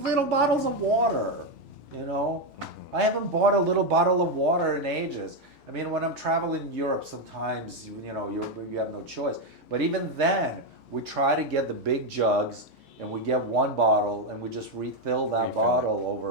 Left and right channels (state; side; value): normal; both; correlation 0.05